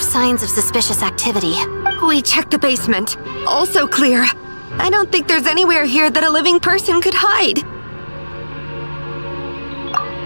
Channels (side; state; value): both; inverted; correlation -1.00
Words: of suspicious activity. We checked the basement. Also clear. I don't think there's anywhere here that a living person could hide.